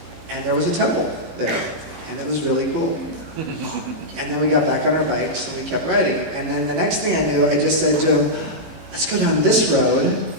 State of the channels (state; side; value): late; left; 18 ms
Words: And there was a temple there, and it was really cool. And then we got back on our bikes, and we kept riding. And then the next thing I knew, I just said to him, let's go down this road.